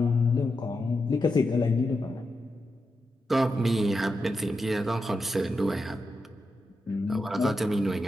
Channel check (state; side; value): normal; both; correlation 0.87